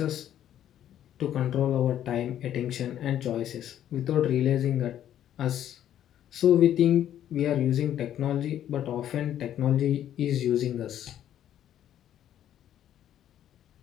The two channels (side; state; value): right; quieter; 11.1 dB